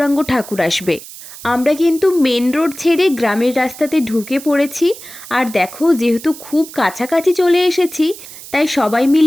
ঠাকুর আসবে। আমরা কিন্তু মেন রোড ছেড়ে গ্রামের রাস্তাতে ঢুকে পড়েছি। আর দেখো, যেহেতু খুব কাছাকাছি চলে এসেছি, তাই সবাই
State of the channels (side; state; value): right; noise; hiss, 15 dB below the sound